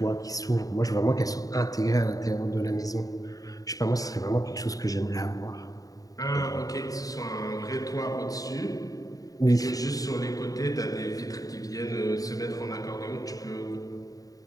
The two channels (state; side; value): late; right; 0.17 ms